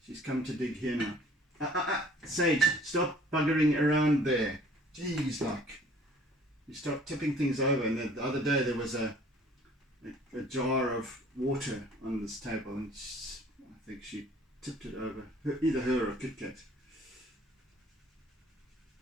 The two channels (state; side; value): normal; both; correlation 0.54